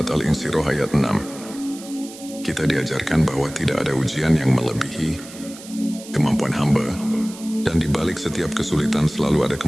Al-Insyirah ayat 6, kita diajarkan bahwa tidak ada ujian yang melebihi kemampuan hamba, dan di balik setiap kesulitan selalu ada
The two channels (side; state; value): right; noise; hiss, 16 dB below the sound